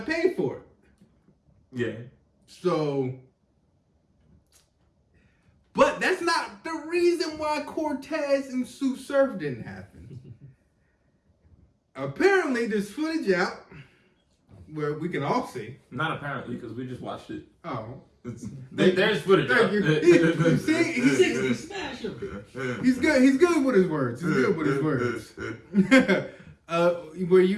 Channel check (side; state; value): both; identical; correlation 1.00